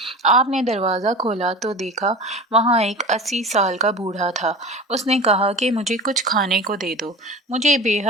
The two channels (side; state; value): both; normal; correlation 0.33